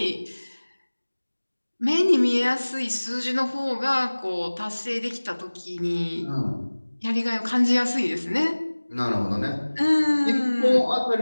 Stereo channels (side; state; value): both; inverted; correlation -1.00